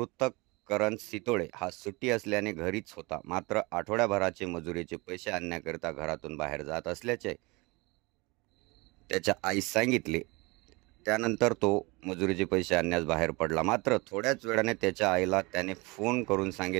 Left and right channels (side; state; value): left; quieter; 25.5 dB